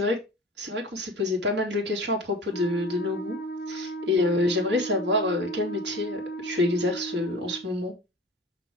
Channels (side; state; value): both; normal; correlation 0.39